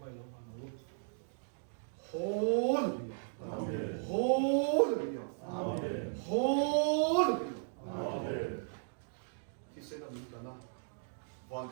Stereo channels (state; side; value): silent; left; digital silence